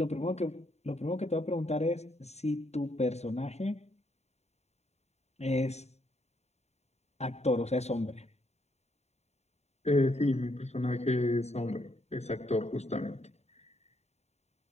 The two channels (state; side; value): late; right; 0.32 ms